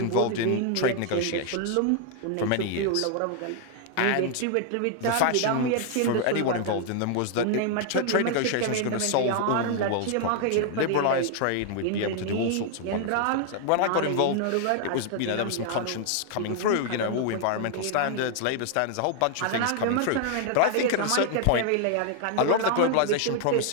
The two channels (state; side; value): different; both; correlation 0.00